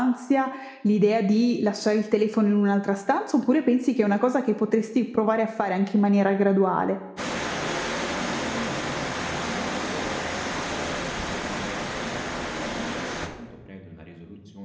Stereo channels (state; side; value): identical; both; correlation 1.00